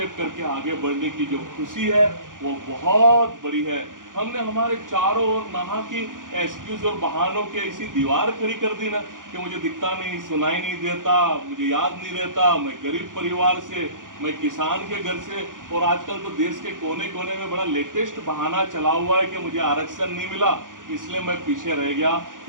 करके आगे बढ़ने की जो खुशी है वो बहुत बड़ी है। हमने हमारे चारों ओर नहा की एक्सक्यूज और बहानों के ऐसी दीवार खड़ी कर दी ना कि मुझे दिखता नहीं, सुनाई नहीं देता, मुझे याद नहीं रहता, मैं गरीब परिवार से, मैं किसान के घर से। और आजकल तो देश के कोने कोने में बड़ा लेटेस्ट बहाना चला हुआ है कि मुझे आरक्षण नहीं मिला इसलिए मैं पीछे रह गया।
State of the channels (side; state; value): left; late; 0.89 ms